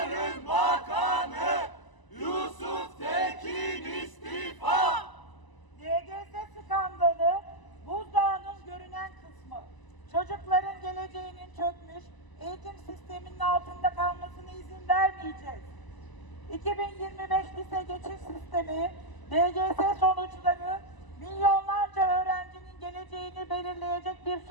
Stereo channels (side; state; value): right; late; 1.0 ms